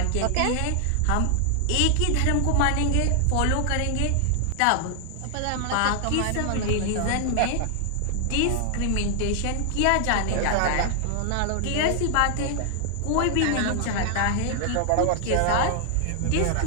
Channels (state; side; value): different; both; correlation 0.00